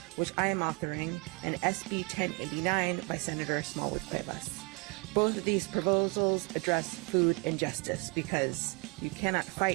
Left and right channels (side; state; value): left; quieter; 32.3 dB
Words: which I am authoring, and SB 1089 by Senator Smallwood Cuevas. Both of these proposals address food injustice, because you cannot